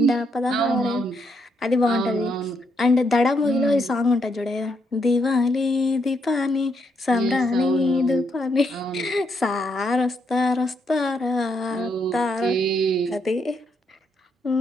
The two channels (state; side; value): normal; both; correlation 0.77